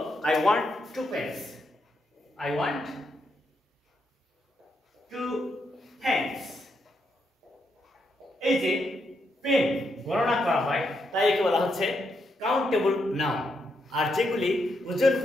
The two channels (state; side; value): normal; both; correlation 0.80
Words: I want 2 pence, I want 2 pence. এই যে পেন গণনা করা হয়, তাই একে বলা হচ্ছে কাউন্টেবল নাউন। আর যেগুলি ওজন